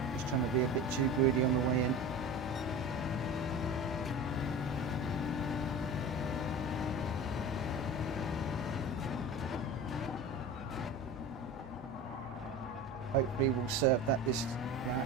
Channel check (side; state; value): both; normal; correlation 0.32